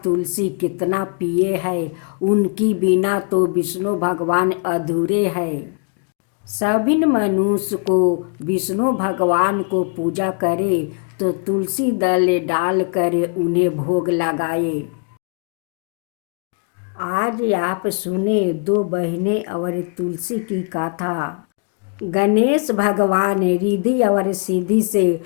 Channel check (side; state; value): right; quieter; 39.1 dB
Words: तुलसी कितना प्रिय है, उनकी बिना तो विष्णु भगवान अधूरे हैं। सभी मनुष्य को विष्णु भगवान को पूजा करे तो तुलसी दल डाल कर उन्हें भोग लगाए। आज आप सुने दो बहनें और तुलसी की कथा। गणेश भगवान रिद्धि और सिद्धि से